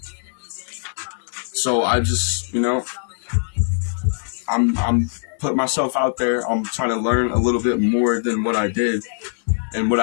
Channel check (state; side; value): silent; right; 62 dB below the other